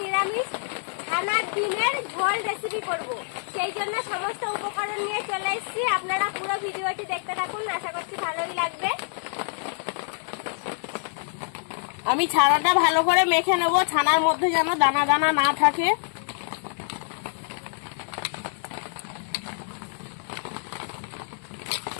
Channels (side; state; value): right; silent; 60 dB below the other